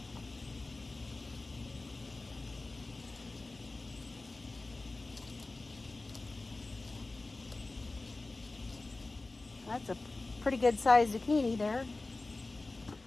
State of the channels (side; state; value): right; quieter; 3.2 dB